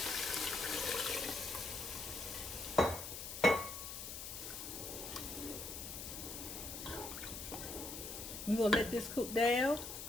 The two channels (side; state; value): left; noise; hiss, 7 dB below the sound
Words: We're going to let this cook down.